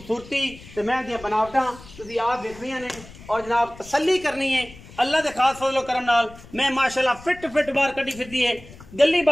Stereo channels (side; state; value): left; noise; rumble, 19 dB below the sound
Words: ते मैं दी बनावटां तुसीं आप देखनियां ने और जनाब तसल्ली करनी है अल्लाह दे खास फजल करम नाल। मैं माशाल्लाह फिट बाहर कड्डी फिरदी है गली